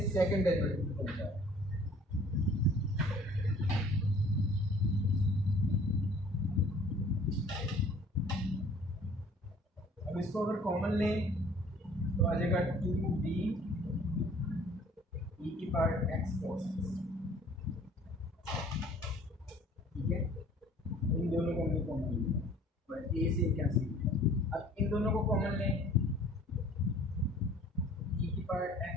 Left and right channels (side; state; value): both; normal; correlation 0.53